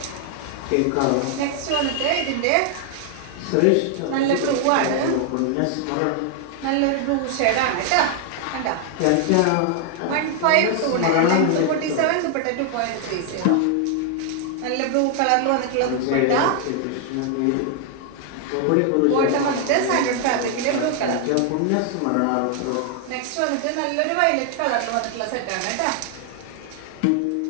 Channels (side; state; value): both; different; correlation 0.00